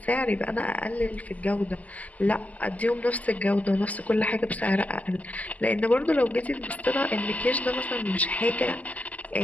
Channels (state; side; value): late; right; 0.076 ms